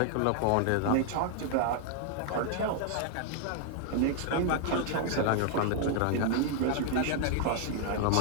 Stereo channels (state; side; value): different; both; correlation 0.00